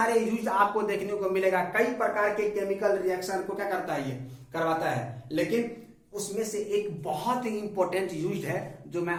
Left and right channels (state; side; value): identical; both; correlation 1.00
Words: यूज आपको देखने को मिलेगा। कई प्रकार के केमिकल रिएक्शन को क्या करता है? ये करवाता है। लेकिन उसमें से एक बहुत ही इंपॉर्टेंट यूज है जो मैं